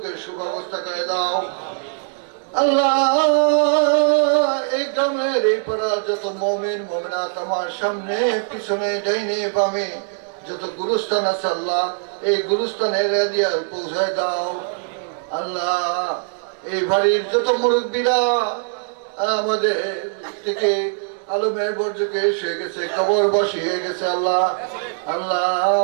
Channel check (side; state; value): left; silent; digital silence